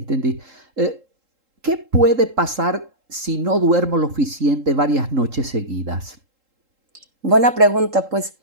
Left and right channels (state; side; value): late; left; 3.8 ms